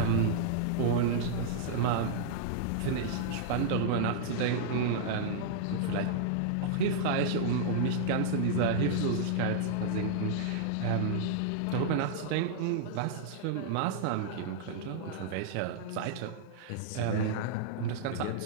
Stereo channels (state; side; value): different; both; correlation -0.01